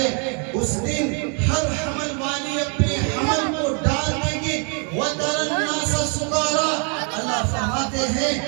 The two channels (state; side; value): quieter; left; 36.2 dB